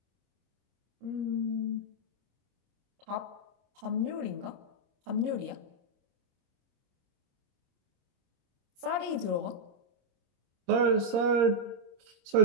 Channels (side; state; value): left; late; 26 ms